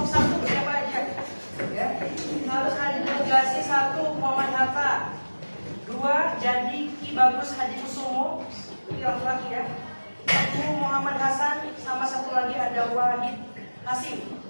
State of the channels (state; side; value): inverted; both; correlation -1.00